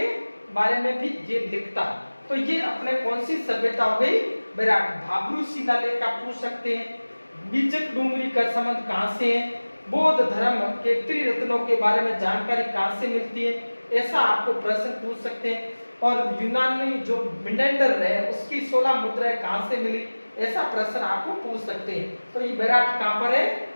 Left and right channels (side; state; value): both; inverted; correlation -1.00